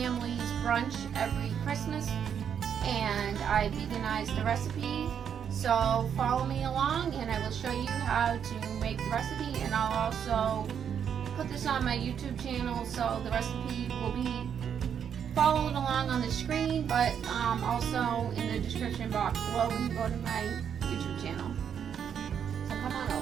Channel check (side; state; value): left; quieter; 8.1 dB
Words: brunch every Christmas, and I veganized the recipe. So follow me along and I will show you how to make the recipe, and I'll also put this on my YouTube channel, so the recipe will be followed along on the screen, but also in the description box below when you go to my YouTube channel. So come on